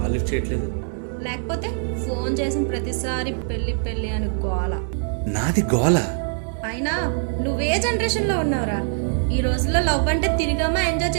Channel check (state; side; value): silent; left; digital silence